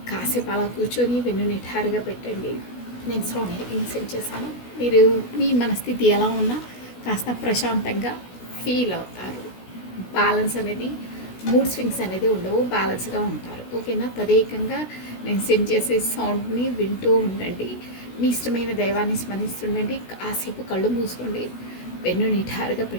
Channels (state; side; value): late; right; 16 ms